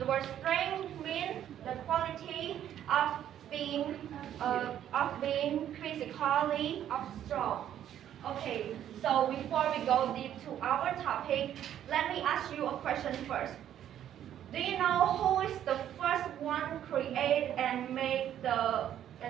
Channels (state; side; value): quieter; left; 10.7 dB